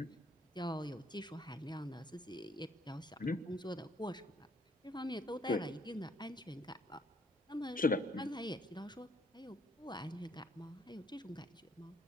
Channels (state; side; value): normal; both; correlation 0.65